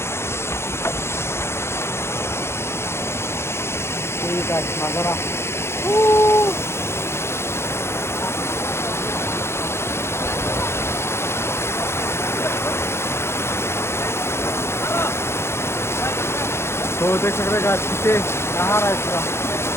ठीक है नज़ारा। तो देख सकते हैं पीछे कहाँ रहा है पूरा।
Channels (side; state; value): right; late; 0.12 ms